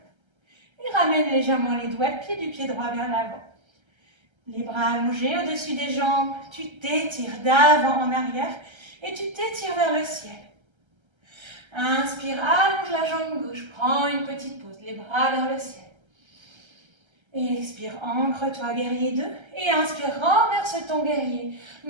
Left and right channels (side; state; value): left; late; 1.3 ms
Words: Et ramène légèrement les doigts de pied du pied droit vers l'avant. Les bras allongés au-dessus des jambes. Tu t'étires d'avant en arrière et tu t'étires vers le ciel. Inspire, allonge la jambe gauche. Prends une petite pause. Les bras vers le ciel. Et expire, ancre-toi, guerrier 2. Et inspire, renverse ton guerrier.